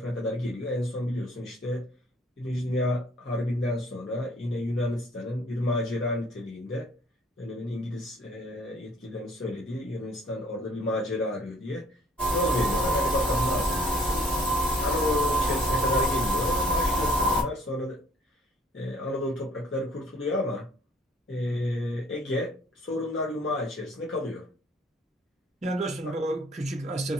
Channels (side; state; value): both; normal; correlation 0.59